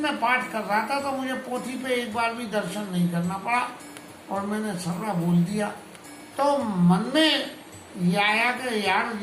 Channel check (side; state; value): both; identical; correlation 1.00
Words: मैं पाठ कर रहा था तो मुझे पोथी पे एक बार भी दर्शन नहीं करना पड़ा और मैंने सर्रा बोल दिया। तो मन में ये आया कि यार